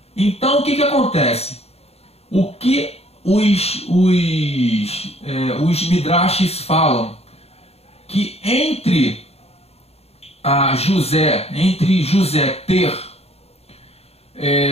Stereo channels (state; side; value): late; right; 0.30 ms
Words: Então o que acontece? O que os midrashes falam? Que entre José ter